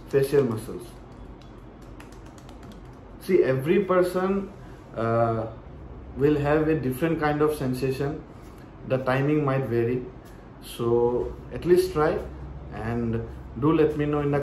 facial muscles. See, every person will have a different kind of sensation. The timing might vary. So at least try, and do let me know in the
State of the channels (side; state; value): both; identical; correlation 1.00